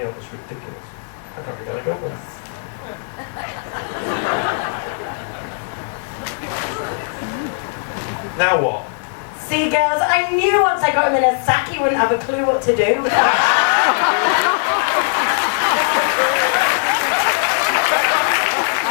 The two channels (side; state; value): right; silent; digital silence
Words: up, it's ridiculous. I can't be going to go with it. Now what? See, girls, I knew once I got him in a sack he wouldn't have a clue what to do.